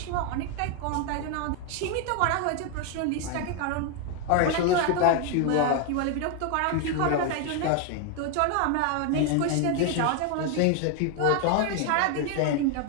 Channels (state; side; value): different; both; correlation 0.01